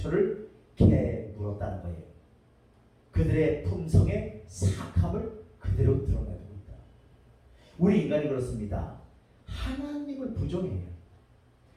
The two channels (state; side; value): identical; both; correlation 1.00